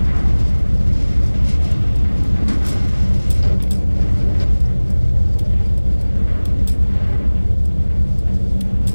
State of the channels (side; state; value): both; inverted; correlation -1.00